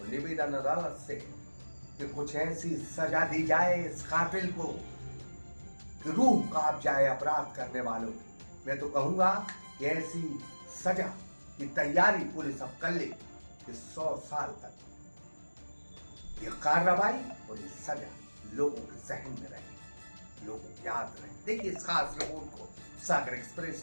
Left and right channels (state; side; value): inverted; both; correlation -1.00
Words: निवेदन अदालत से कि कुछ ऐसी सजा दी जाए इस कातिल को कि रूह कांप जाए अपराध करने वालों की। मैं तो कहूंगा कि ऐसी सजा की तैयारी पुलिस अब कर ले कि 100 साल तक ये कार्रवाई और ये सजा लोगों के जहन में रहे, लोगों को याद रहे। देखिए इस खास रिपोर्ट को सागर एक्सप्रेस